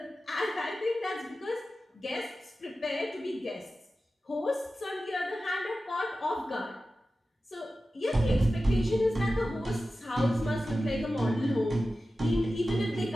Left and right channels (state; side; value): normal; both; correlation 0.94